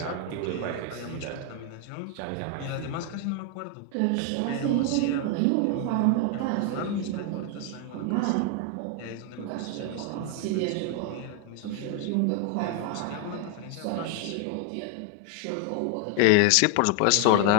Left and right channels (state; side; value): different; both; correlation 0.00